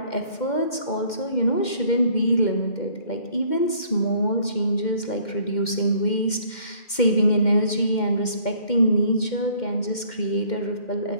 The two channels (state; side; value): late; right; 2.1 ms